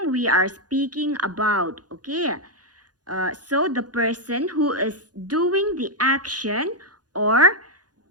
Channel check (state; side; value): late; left; 0.69 ms